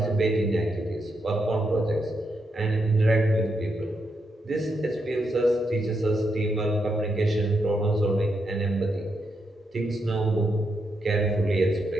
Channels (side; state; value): both; normal; correlation 0.82